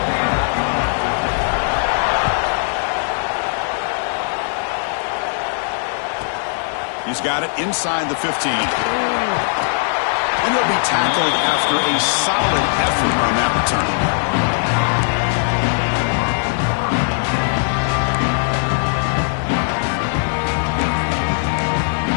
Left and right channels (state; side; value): silent; right; digital silence